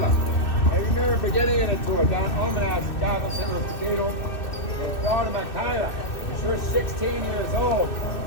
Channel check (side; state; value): right; late; 2.6 ms